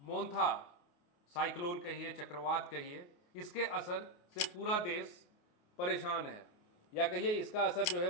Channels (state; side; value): late; right; 28 ms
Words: मोंथा साइक्लोन कहिए, चक्रवात कहिए, इसके असर से पूरा देश परेशान है, या कहिए इसका असर जो है